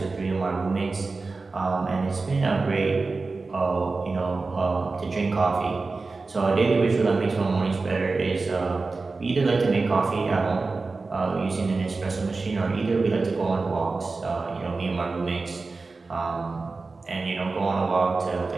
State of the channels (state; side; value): quieter; left; 3.9 dB